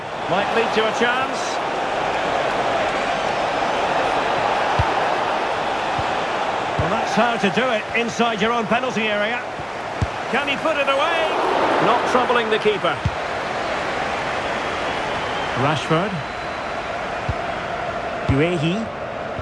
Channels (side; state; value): both; identical; correlation 1.00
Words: Might lead to a chance. Well, that's how to do it inside your own penalty area. Can he put it away? Not troubling the keeper. Rashford. Guehi.